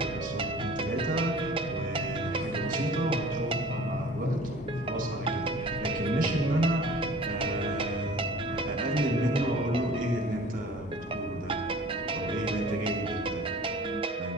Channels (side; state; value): both; normal; correlation 0.46